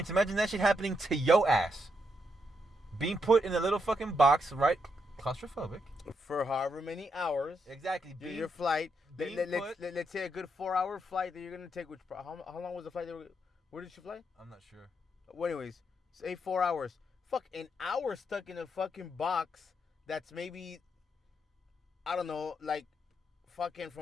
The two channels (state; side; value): normal; both; correlation 0.79